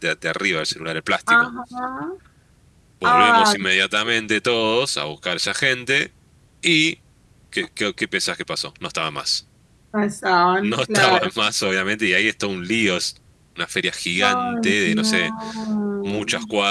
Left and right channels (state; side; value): identical; both; correlation 1.00